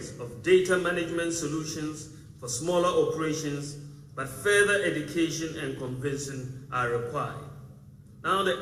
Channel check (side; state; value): both; identical; correlation 1.00